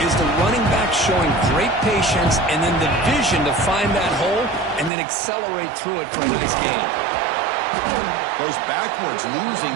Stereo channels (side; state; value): left; drops out; at 4.9 s